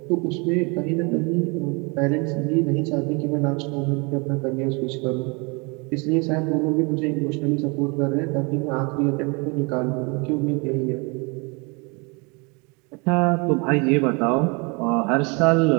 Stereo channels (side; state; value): left; quieter; 30.1 dB